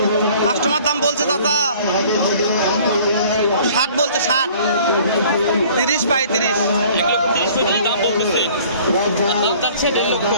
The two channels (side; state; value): both; inverted; correlation -0.53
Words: কাস্টমার দাম বলছে চাচা 60 বলছে, 60। 30 35। দাম বলতেছে, দাম যাচ্ছে